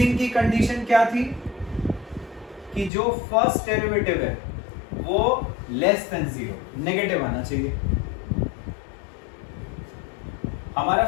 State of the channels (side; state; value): right; drops out; at 2.9 s